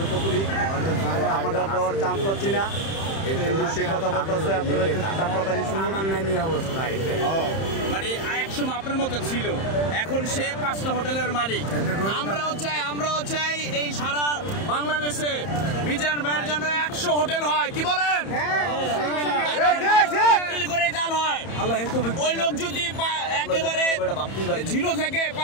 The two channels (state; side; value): late; right; 31 ms